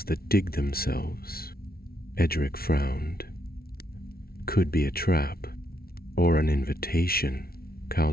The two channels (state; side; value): late; right; 0.44 ms